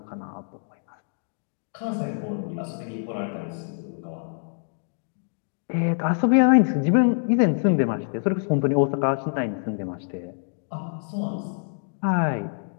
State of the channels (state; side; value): silent; right; digital silence